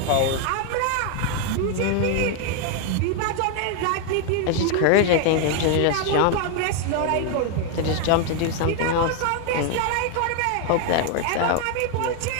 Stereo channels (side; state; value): both; different; correlation 0.01